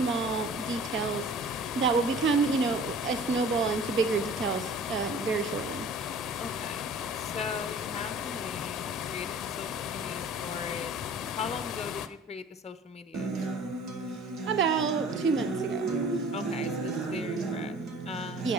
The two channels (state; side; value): normal; both; correlation 0.46